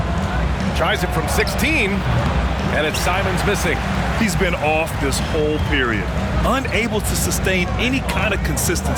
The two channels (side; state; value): both; identical; correlation 1.00